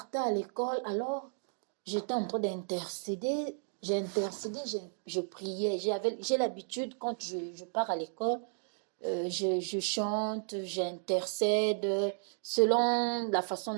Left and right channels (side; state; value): left; silent; digital silence